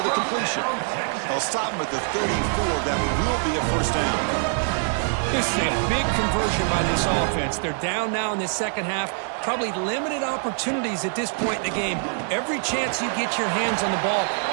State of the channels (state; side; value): silent; left; 59 dB below the other